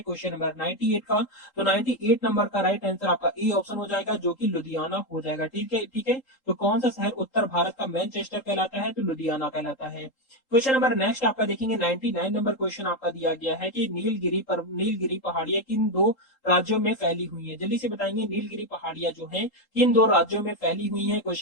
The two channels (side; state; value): right; late; 3.8 ms